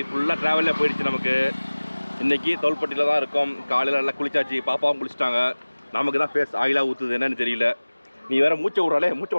ஃபுல்லாக ட்ராவலில் போயிடுச்சு. நமக்கு இன்றைக்கி தோல்பட்டியில் தான் இருக்கோம். காலையில் நல்லா குளிச்சாச்சு, பாப்பாவும் குளிச்சிட்டாங்க. நமக்கு தான் ஃபேஸ் ஆயிலாக ஊற்றுது என்னன்னு தெரியல. நீ வேறு மூச்சை விட்றாலே, மூச்சை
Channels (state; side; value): inverted; both; correlation -1.00